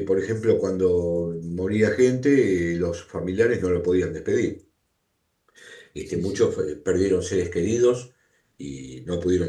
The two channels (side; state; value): both; identical; correlation 1.00